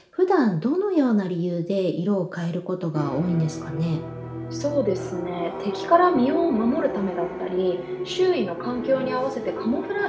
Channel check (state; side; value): identical; both; correlation 1.00